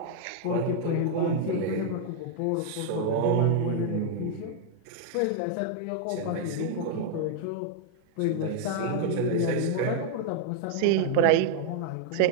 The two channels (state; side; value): different; both; correlation -0.01